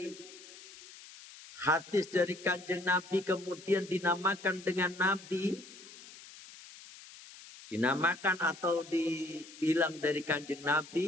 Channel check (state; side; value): noise; left; hiss, 18 dB below the sound